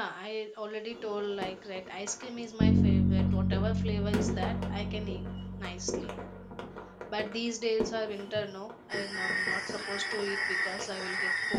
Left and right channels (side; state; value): both; identical; correlation 1.00